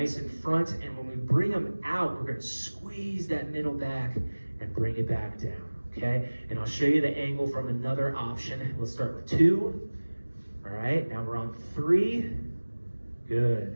in front, and when we bring them out, we're going to squeeze that middle back and bring it back down, okay? And I'll show you the angle from another option. Let's start with 2. All right, now we're on 3.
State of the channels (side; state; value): both; inverted; correlation -1.00